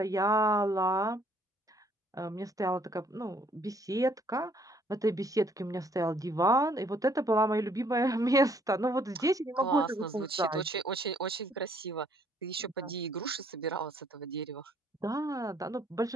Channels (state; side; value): normal; both; correlation 0.64